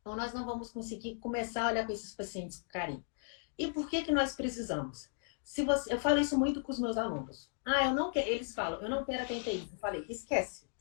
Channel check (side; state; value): right; silent; digital silence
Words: ou nós não vamos conseguir começar a olhar para esses pacientes com carinho. E por que que nós precisamos? Se você, eu falo isso muito com os meus alunos. Ah, eu não quero, eles falam, eu não quero atender isso. Eu falei, esquece.